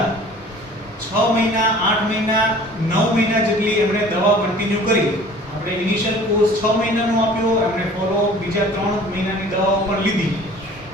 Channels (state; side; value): normal; both; correlation 0.48